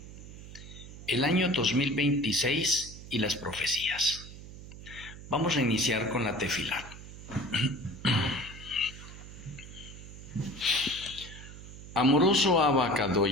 el año 2026 y las profecías. Vamos a iniciar con la tefilá. Amoroso Abacado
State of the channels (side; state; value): right; noise; hum, 14 dB below the sound